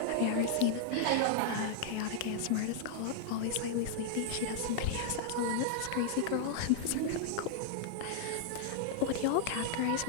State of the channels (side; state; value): both; different; correlation -0.01